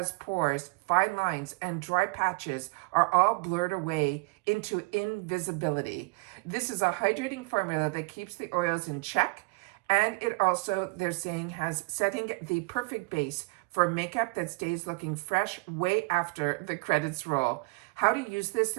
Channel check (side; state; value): left; quieter; 28.7 dB